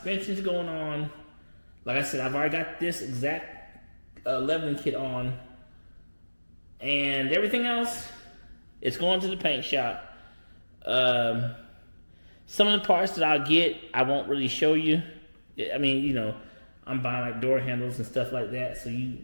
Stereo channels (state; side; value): inverted; both; correlation -1.00